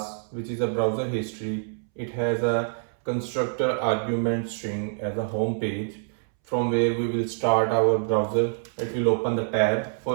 which is a browser history. It has a constructor argument string as a home page from where we will start our browser. It will open the tab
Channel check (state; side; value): silent; left; 61 dB below the other